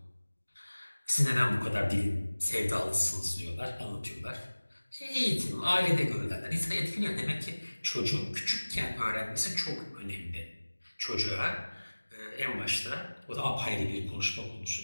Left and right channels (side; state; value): both; inverted; correlation -1.00